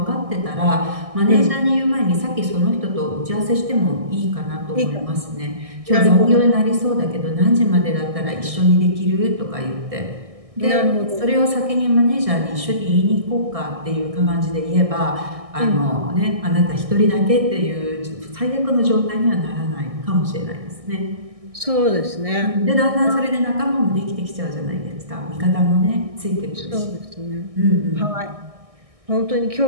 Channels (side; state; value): left; late; 1.6 ms